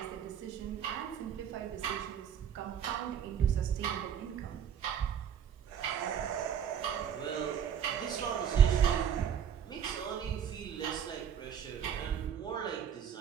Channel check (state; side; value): quieter; left; 8.6 dB